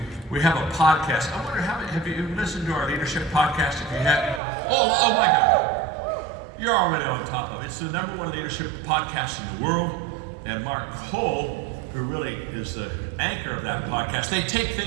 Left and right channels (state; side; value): drops out; left; at 4.4 s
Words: we have a podcast. I wonder, have you listened to our leadership podcast? If you have, oh my God. You're already on top of it. It's the #1 leadership podcast in the world. And Mark Cole, who really is the anchor of that podcast, they take